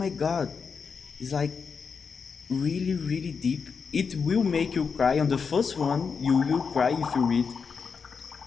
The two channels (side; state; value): right; quieter; 5.7 dB